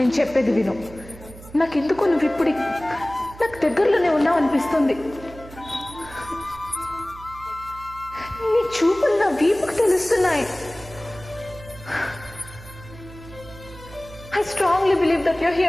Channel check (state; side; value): noise; right; hum, 17 dB below the sound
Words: చెప్పేది విను. నాకెందుకో నువ్వు ఇప్పుడు నాకు దగ్గరలోనే ఉన్నావు అనిపిస్తుంది. నీ చూపులు నా వీపుకు తెలుస్తున్నాయి. I strongly believe that you're